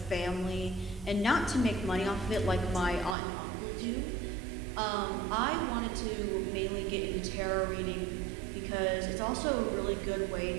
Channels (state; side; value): drops out; left; at 3.2 s